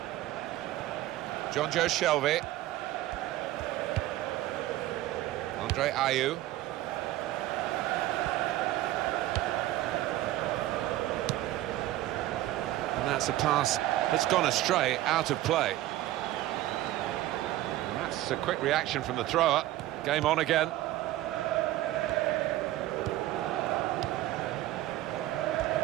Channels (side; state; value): left; quieter; 15.3 dB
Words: John Joe Shelvey. Andre Ayew. And that's a pass that's gone astray, out of play. And that's a quick reaction from the thrower. Game on again.